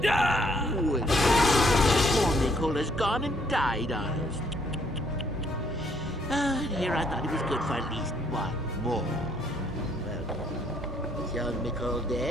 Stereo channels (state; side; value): normal; both; correlation 0.68